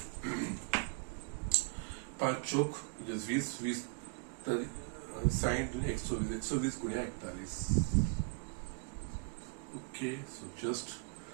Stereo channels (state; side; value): quieter; left; 37.8 dB